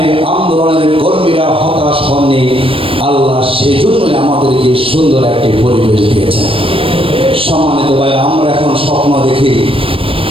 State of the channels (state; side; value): late; left; 0.26 ms